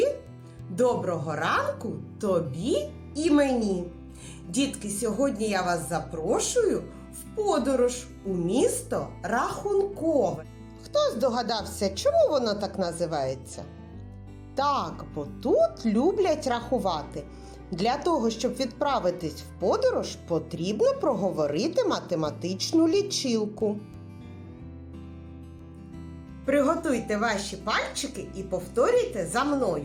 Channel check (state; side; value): identical; both; correlation 1.00